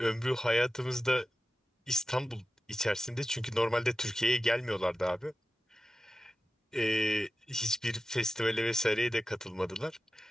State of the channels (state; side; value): normal; both; correlation 0.93